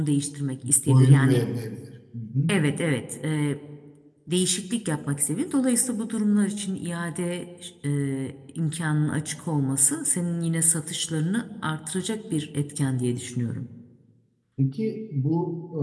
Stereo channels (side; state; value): both; identical; correlation 1.00